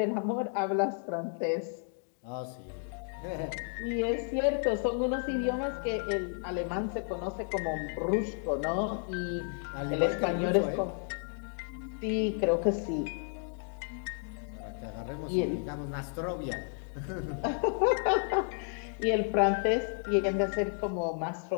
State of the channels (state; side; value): silent; right; 56 dB below the other